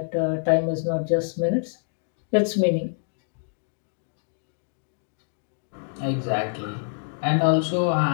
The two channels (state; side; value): silent; right; digital silence